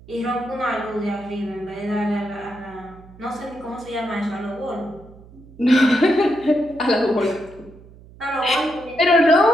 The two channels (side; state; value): right; noise; hum, 21 dB below the sound